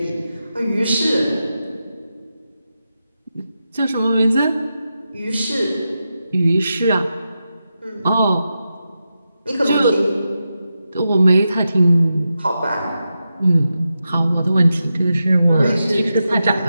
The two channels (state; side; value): inverted; both; correlation -0.89